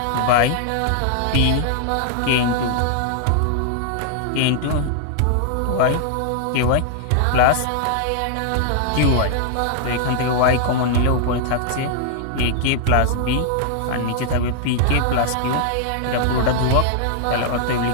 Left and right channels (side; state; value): both; different; correlation -0.01